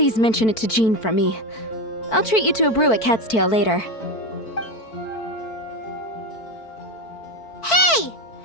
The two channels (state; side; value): late; right; 4.5 ms